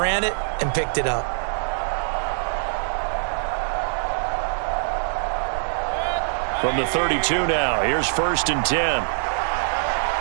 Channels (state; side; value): silent; left; digital silence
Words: it and picked it up. From the 32 now, here's 1st and 10.